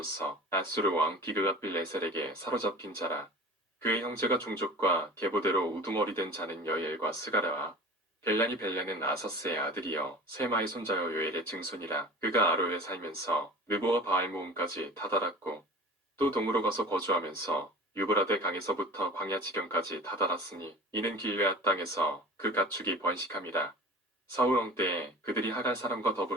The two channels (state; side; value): normal; both; correlation 0.40